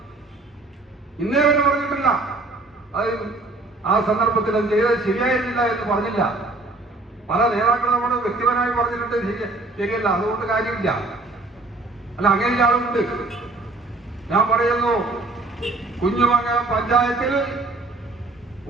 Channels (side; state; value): left; quieter; 3.2 dB